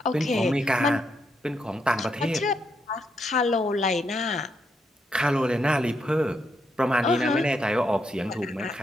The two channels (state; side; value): normal; both; correlation 0.79